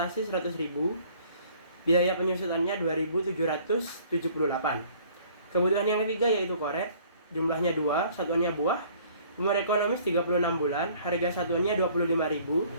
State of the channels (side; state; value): both; inverted; correlation -0.55